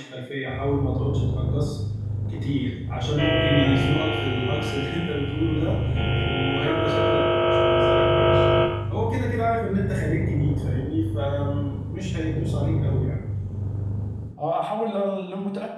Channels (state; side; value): identical; both; correlation 1.00